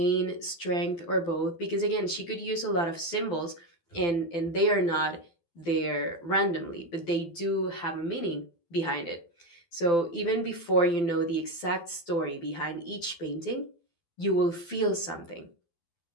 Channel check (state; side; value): late; right; 12 ms